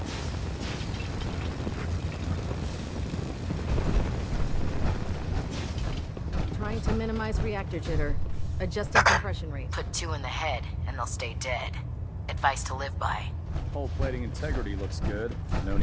Trying to minimize reactor jitter. Adjusting compression rate. Put 2 in the head, and they'll stay dead. Advice to live by. Hull plating integrity looks good. No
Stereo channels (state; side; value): identical; both; correlation 1.00